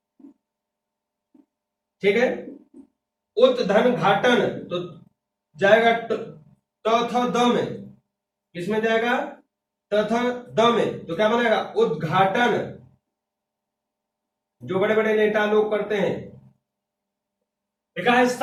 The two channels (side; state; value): both; identical; correlation 1.00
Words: ठीक है, उत धन घाटन, तो जाएगा त थ द में, किसमें जाएगा त थ द में, तो क्या बनाएगा उद्घाटन। जो बड़े बड़े नेता लोग करते हैं। लिखा है